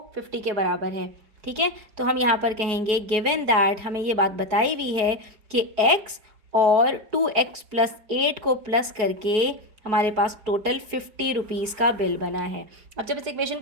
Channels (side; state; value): left; late; 4.7 ms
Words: 50 के बराबर है। ठीक है, तो हम यहाँ पर कहेंगे गिवन दैट, हमें ये बात बताई हुई है कि x और 2x प्लस 8 को प्लस करके हमारे पास टोटल ₹50 का बिल बना है। अब जब इस इक्वेशन